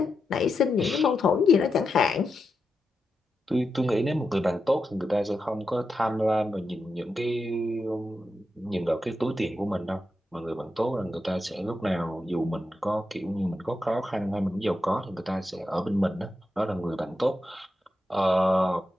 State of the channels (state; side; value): normal; both; correlation 0.87